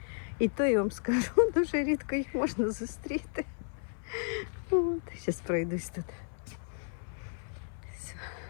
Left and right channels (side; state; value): right; silent; 56 dB below the other